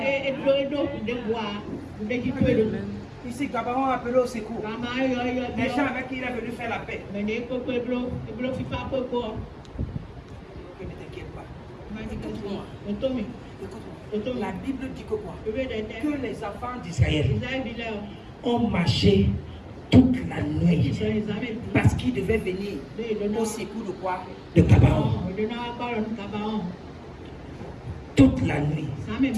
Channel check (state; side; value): identical; both; correlation 1.00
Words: Ici, Gabaon a appelé au secours. Les gens avec qui il est venu faire la paix. Ne t'inquiète pas. Écoute-moi. La Bible dit que quoi? Que les enfants d'Israël ont marché toute la nuit parce qu'ils devaient venir au secours de quoi? De Gabaon. Toute la nuit.